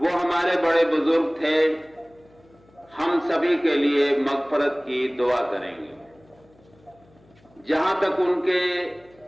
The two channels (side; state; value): left; noise; hum, 30 dB below the sound